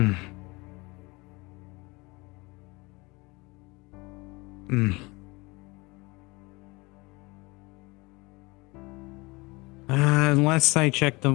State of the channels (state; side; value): quieter; right; 24.7 dB